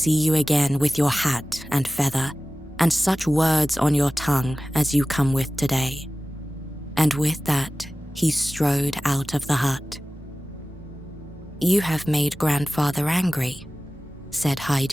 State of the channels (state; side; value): normal; both; correlation 0.97